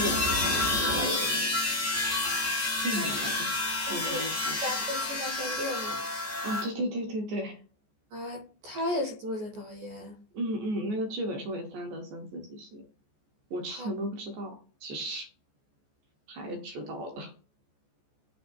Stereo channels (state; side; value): late; left; 14 ms